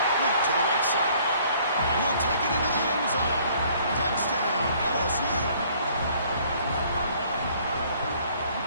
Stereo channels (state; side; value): inverted; both; correlation -0.59